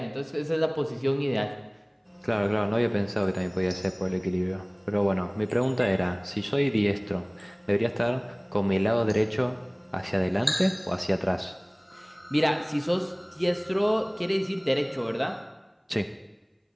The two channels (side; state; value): both; identical; correlation 1.00